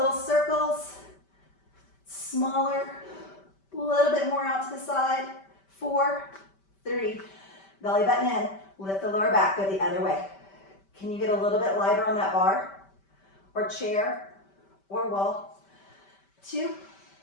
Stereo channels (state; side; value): late; right; 5.1 ms